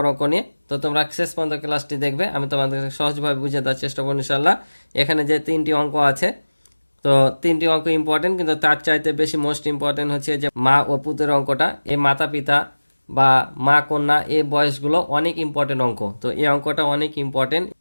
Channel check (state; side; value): inverted; both; correlation -1.00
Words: অঙ্ক নিয়ে। তো তোমরা শেষ পর্যন্ত ক্লাসটি দেখবে, আমি তোমাদের সহজভাবে বুঝিয়ে দেওয়ার চেষ্টা করব ইনশাআল্লাহ। এখানে যে 3টি অঙ্ক আছে, তো 3টি অঙ্ক ইম্পর্টেন্ট, কিন্তু তার চাইতে বেশি মোস্ট ইম্পর্টেন্ট হচ্ছে যে মা ও পুতের অঙ্কটা। এই মাতা পিতা বা মা কন্যা এই বয়সগুলো অনেক ইম্পর্টেন্ট অঙ্ক। তো এই অঙ্কটা অনেক ইম্পর্টেন্ট,